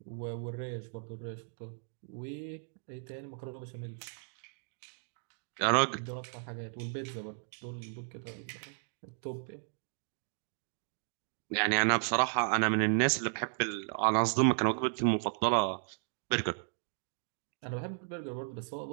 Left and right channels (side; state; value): left; silent; digital silence